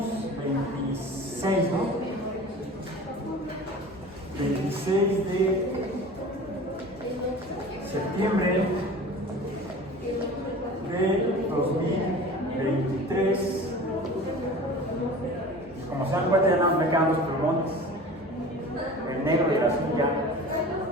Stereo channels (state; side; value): normal; both; correlation 0.39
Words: 26, ¿no? 26 de septiembre de 2023. Como se dan cuenta, ya no me quedan los plumones, el negro y el azul ya.